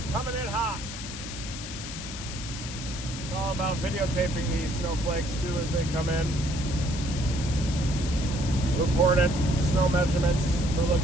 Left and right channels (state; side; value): noise; left; hiss, 9 dB below the sound